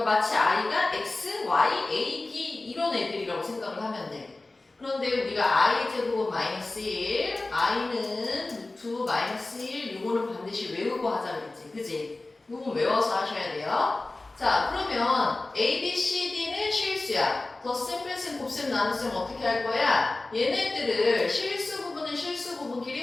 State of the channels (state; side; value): quieter; right; 3.1 dB